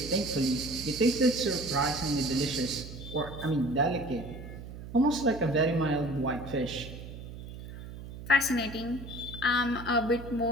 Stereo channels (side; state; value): right; noise; hum, 12 dB below the sound